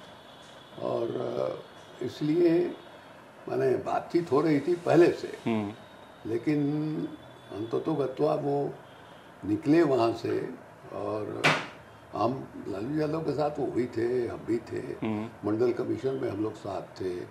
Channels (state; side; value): identical; both; correlation 1.00